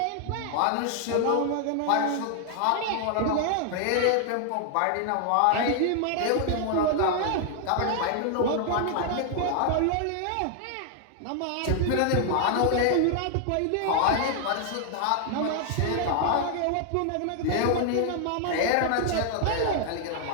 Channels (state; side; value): different; both; correlation 0.00